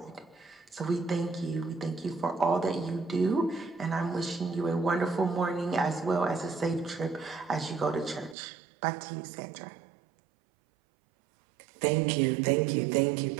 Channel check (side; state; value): left; drops out; at 8.3 s